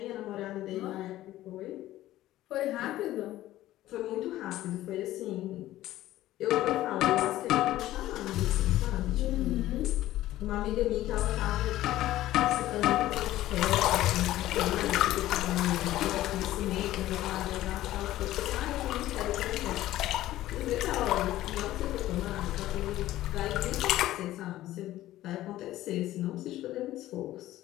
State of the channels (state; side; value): quieter; right; 14.9 dB